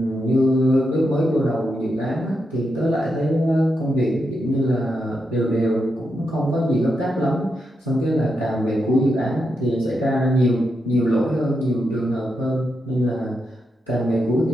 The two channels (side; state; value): both; normal; correlation 0.84